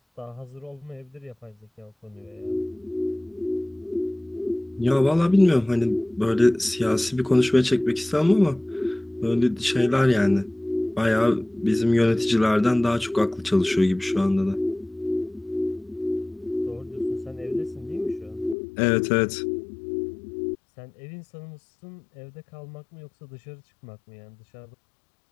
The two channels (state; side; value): drops out; right; at 18.6 s